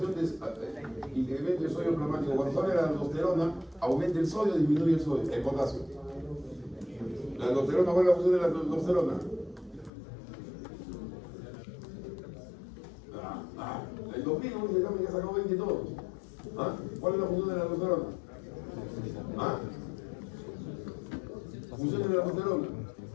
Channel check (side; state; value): right; drops out; at 9.9 s